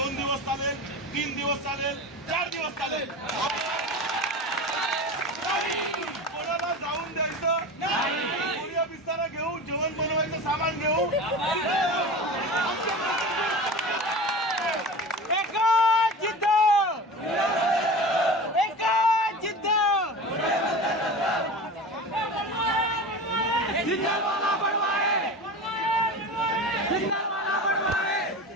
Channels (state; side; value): normal; both; correlation 0.31